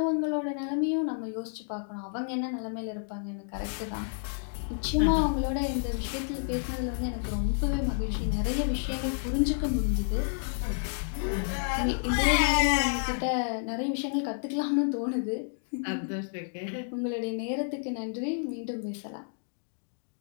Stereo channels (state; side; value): silent; right; digital silence